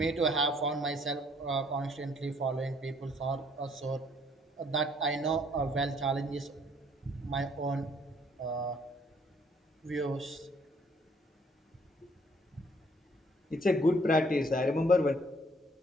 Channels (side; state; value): both; normal; correlation 0.63